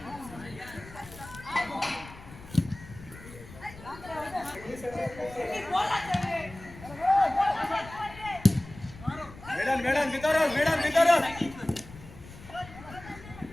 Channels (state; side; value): noise; left; rumble, 17 dB below the sound